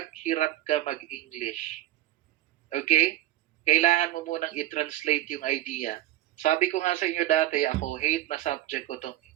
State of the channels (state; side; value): quieter; left; 14.3 dB